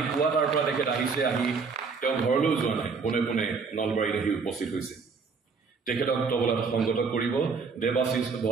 পুৱা তাৰ পৰা তেখেত আহিছে। আহি তেওঁ ঘৰলৈও যোৱা নাই, পোনে পোনে নলবাৰীত আহি উপস্থিত হৈছে। তেখেতক তবলাত সংগত কৰিব দেৱাশিষ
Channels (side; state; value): left; quieter; 5.0 dB